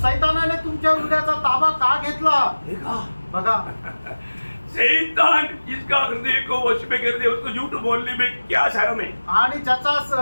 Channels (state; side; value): inverted; both; correlation -1.00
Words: सैतानाने तुमच्या हृदयाचा ताबा का घेतला? देखा, बघा, शैतान जिसका हृदय को वश में कर दिया उसको झूठ बोलने में क्या शर्म है? आणि ज्याचा